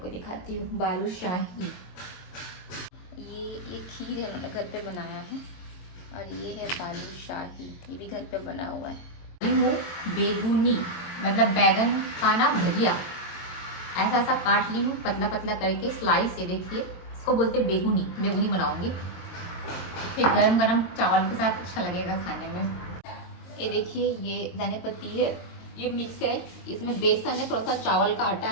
को दिखाती हूँ। बालूशाही, ये खीर है, उन्होंने घर पे बनाया है। और ये है बालूशाही, ये भी घर पे बना हुआ है। बेगुनी मतलब बैगन का ना भजिया, ऐसा ऐसा काट ली हूँ पतला पतला करके स्लाइस। ये देखिए, इसको बोलते हैं बेगुनी। बेगुनी बनाऊंगी, फिर गरम गरम चावल के साथ अच्छा लगेगा खाने में। ये देखिए, ये धनिया पत्ती है, ये मिक्स है, इसमें बेसन है, थोड़ा सा चावल का आटा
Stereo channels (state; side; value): late; right; 22 ms